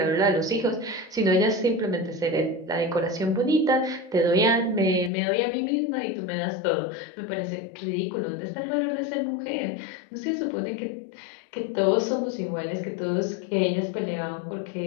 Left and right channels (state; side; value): drops out; right; at 5.1 s